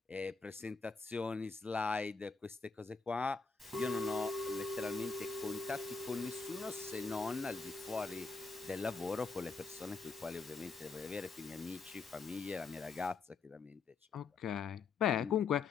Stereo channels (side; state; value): right; quieter; 4.6 dB